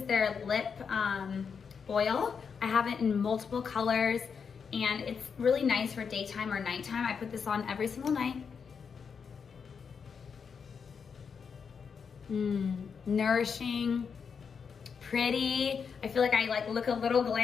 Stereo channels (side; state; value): right; quieter; 6.2 dB